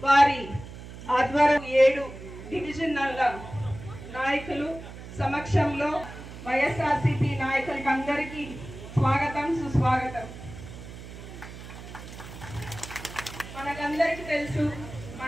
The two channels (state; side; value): noise; right; hum, 13 dB below the sound